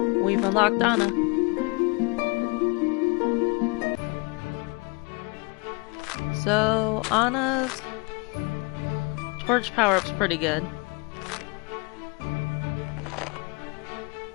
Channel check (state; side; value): quieter; right; 29.7 dB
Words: We've unlocked Anna. So, Anna's torch power-up's pretty good.